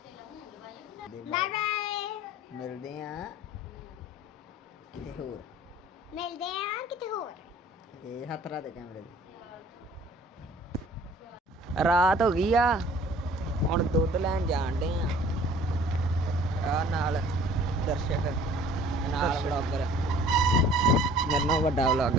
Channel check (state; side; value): normal; both; correlation 0.52